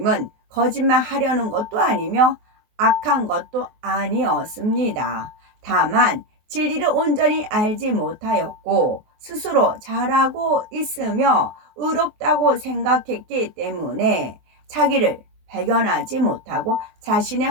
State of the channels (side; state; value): left; late; 23 ms